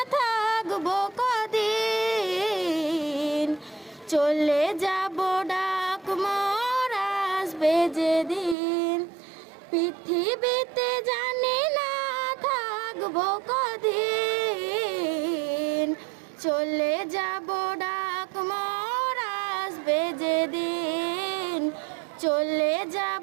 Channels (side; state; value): left; drops out; at 8.6 s